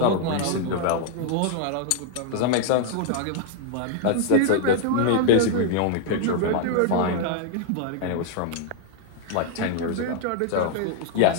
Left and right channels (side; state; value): both; different; correlation 0.00